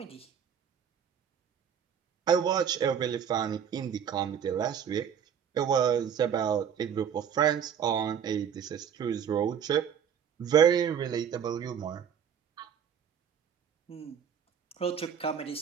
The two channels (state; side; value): quieter; left; 8.2 dB